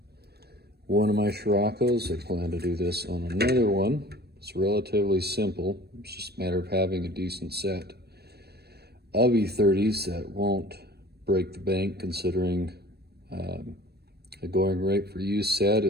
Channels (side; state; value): left; late; 0.47 ms